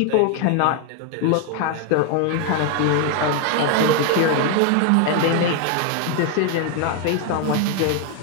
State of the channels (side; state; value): both; different; correlation 0.01